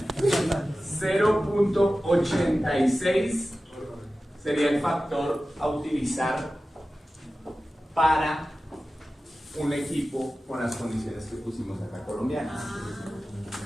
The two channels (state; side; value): normal; both; correlation 0.95